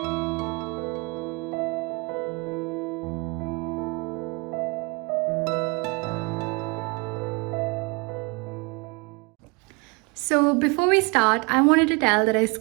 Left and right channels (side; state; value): left; quieter; 29.4 dB